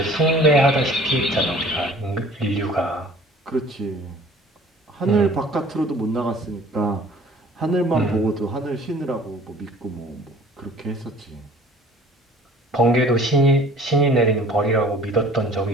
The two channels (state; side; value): normal; both; correlation 0.50